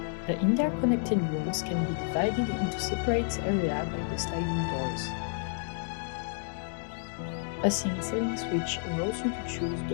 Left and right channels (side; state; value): right; silent; 57 dB below the other